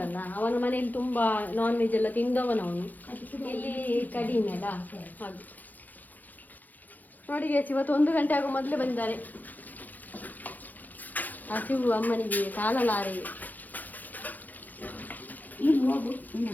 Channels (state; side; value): late; right; 0.083 ms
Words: ಅಲ್ಲ, ಅವನ ಮನೆಯಲ್ಲಿ ತುಂಬಾ ನಾನ್ ವೆಜ್ ಎಲ್ಲ ತಿಂದವನವನು, ಇಲ್ಲಿ ಕಡಿಮೆ ಅಲ್ಲ ಹಾಗೆ. ನೋಡಿ ಇವತ್ತು 1 ಗಂಟೆ ಆಗೋ ಮೊದಲೇ ಬಂದಿದ್ದಾರೆ. ಹಸಿವು ಅಮ್ಮನಿಗೆ ಕಾಲಲಾರೆ. ಇಲ್ಲಿ ಹೋಗು, ಇನ್ನು